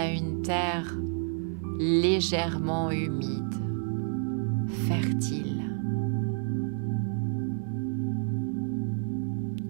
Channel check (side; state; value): left; silent; digital silence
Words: une terre légèrement humide, fertile.